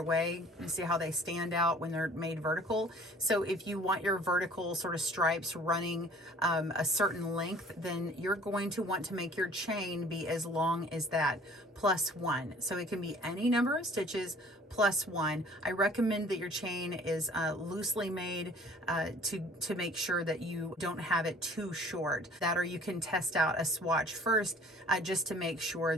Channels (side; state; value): both; normal; correlation 0.51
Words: way. You see how they stand out when they're made vertical. So if you want your vertical sort of stripes running a certain length, then you're going to want to make your chain be as long as that, +1. So it can be any number of stitches +1. I recommend that your chain is loosely made to make sure that you don't have it too short. That, or you can test out a swatch first just to make sure